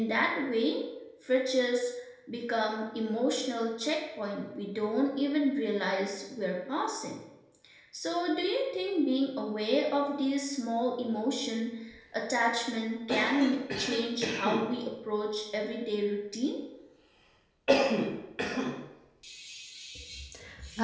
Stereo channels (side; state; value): both; identical; correlation 1.00